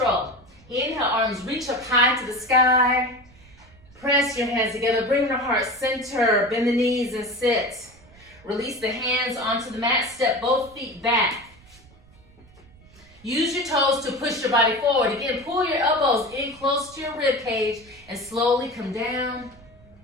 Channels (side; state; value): right; noise; rumble, 25 dB below the sound